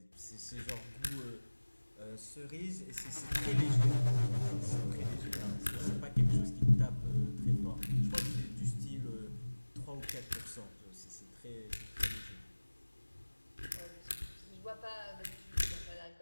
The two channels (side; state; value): both; inverted; correlation -1.00